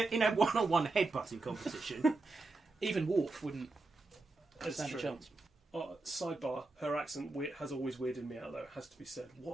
a one-on-one headbutting competition, even Worf wouldn't stand a chance. Sidebar: her accent has always weirded me out, though. It has to be said.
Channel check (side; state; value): left; quieter; 3.3 dB